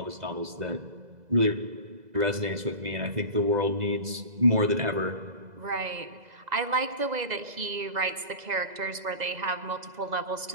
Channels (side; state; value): left; late; 2.0 ms